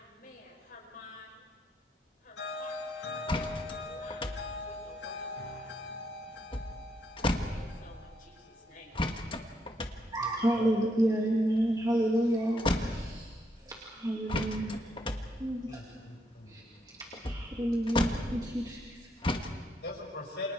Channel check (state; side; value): normal; both; correlation 0.76